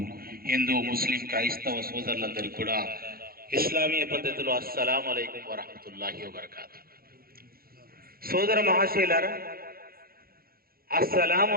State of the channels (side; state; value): left; late; 0.43 ms